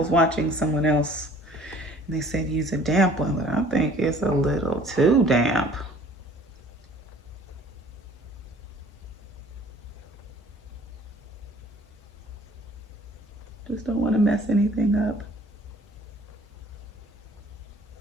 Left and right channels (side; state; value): both; normal; correlation 0.52